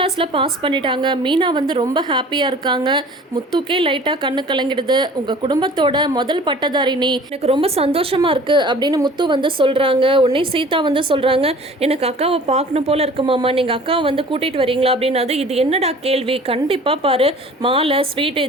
பாஸ் பண்ணிட்டாங்க. மீனா வந்து ரொம்ப ஹாப்பியாக இருக்காங்க. முத்துக்கே லைட்டாக கண்ணு கலங்கிடுது. உங்கள் குடும்பத்தோட முதல் பட்டதாரி நீ, எனக்கு ரொம்ப சந்தோஷமாக இருக்குது அப்படின்னு முத்து வந்து சொல்கிறாங்க. உடனே சீதா வந்து சொல்கிறாங்க, எனக்கு அக்காவை பார்க்கணும் போல் இருக்குமாம்மா, நீங்கள் அக்காவை வந்து கூட்டிகிட்டு வரீங்களா அப்படின்னாது. இது என்னடா கேள்வி, கண்டிப்பாக பாரு, மாலை ஸ்வீட்டு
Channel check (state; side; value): normal; both; correlation 0.46